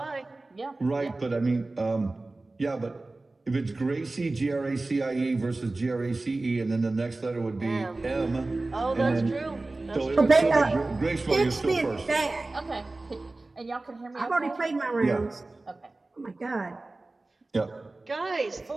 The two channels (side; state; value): left; quieter; 3.1 dB